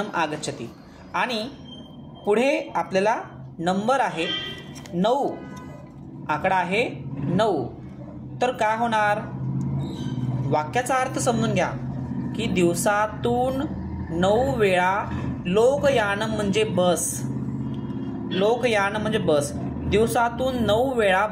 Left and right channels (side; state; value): both; identical; correlation 1.00